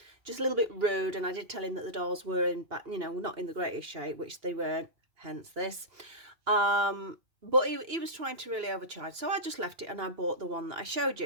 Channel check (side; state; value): left; late; 2.9 ms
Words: just a little bit rude. And I did tell him that the dolls were in back, not in the greatest shape, which they weren't, hence this. But he was trying to really overcharge, so I just left it and I bought the one that I showed